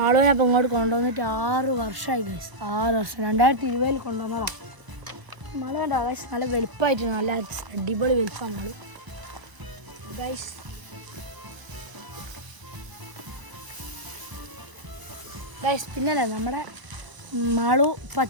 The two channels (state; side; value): late; left; 1.0 ms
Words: അപ്പോൾ ഇങ്ങോട്ട് കൊണ്ടുവന്നിട്ട് 6 വർഷമായി ഗൈസ്. 6 വർഷം 2020 കൊണ്ടുവന്നതാണ്. മാളു കണ്ടോ ഗൈസ്, നല്ല വെളുപ്പമായിട്ട് നല്ല അടിപൊളി വെളുപ്പമാണ് മാളു ഗൈസ്. ഗൈസ് പിന്നല്ലേ നമ്മുടെ മാളു ഇപ്പോൾ